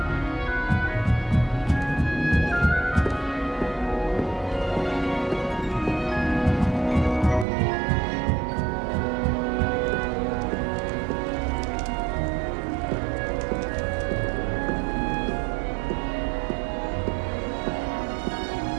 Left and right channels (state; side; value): drops out; left; at 7.5 s